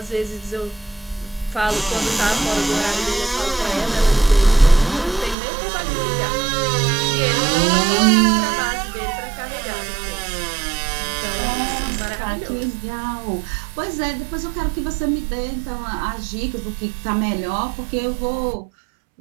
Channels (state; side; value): drops out; left; at 5.4 s